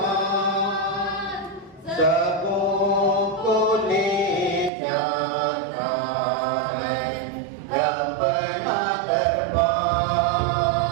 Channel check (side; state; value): left; drops out; at 4.7 s